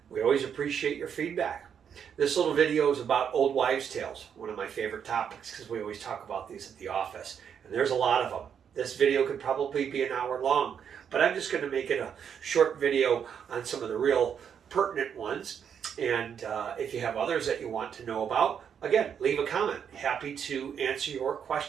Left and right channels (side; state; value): left; quieter; 7.8 dB